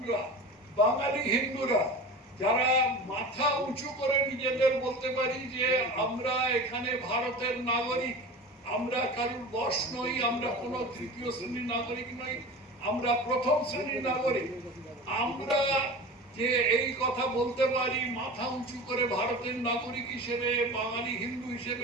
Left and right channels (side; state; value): both; normal; correlation 0.33